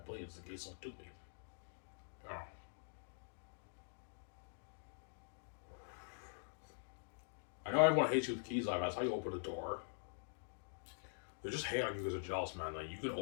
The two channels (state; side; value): silent; right; digital silence